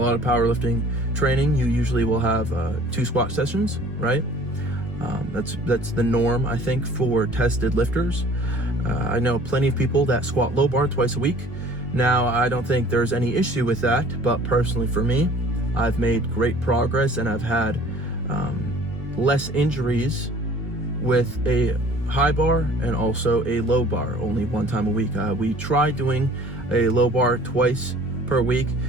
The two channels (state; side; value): normal; both; correlation 0.50